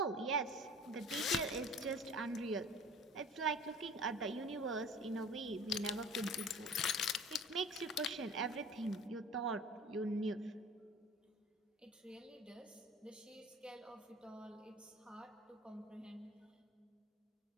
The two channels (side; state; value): both; normal; correlation 0.43